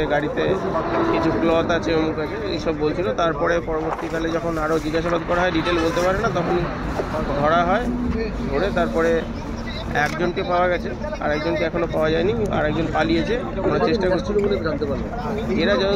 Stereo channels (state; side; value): identical; both; correlation 1.00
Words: গাড়িতে কিছু ক্লথ আছে, অমুক আছে, এইসব বলছিল। তারপরে পরবর্তীকালে যখন আরও জিজ্ঞাসাবাদ করা হয়, ডিটেল বলতে পারে না, তখন ধরা হয়। ধরে তারপরে একজনকে পাওয়া গেছে, আর একজনকে এখনো পাওয়া যায়নি, আর একজন পালিয়েছে। আমরা চেষ্টা করছিল বলে জানতে পারলাম। এরা